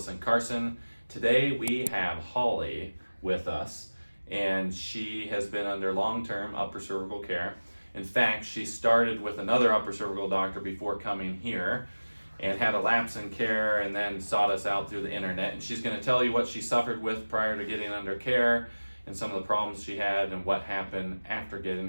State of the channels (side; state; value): both; inverted; correlation -1.00